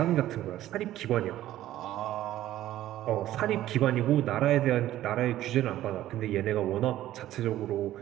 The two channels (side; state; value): left; quieter; 13.8 dB